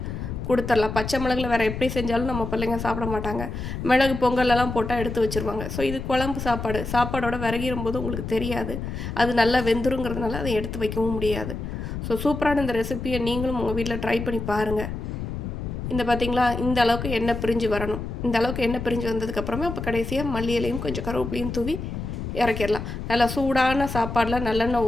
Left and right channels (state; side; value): noise; left; rumble, 6 dB below the sound